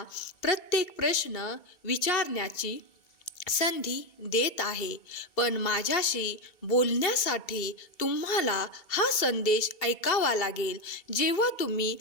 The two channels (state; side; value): late; right; 2.2 ms